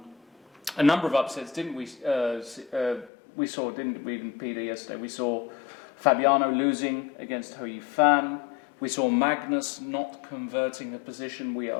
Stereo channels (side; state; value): right; drops out; at 3.1 s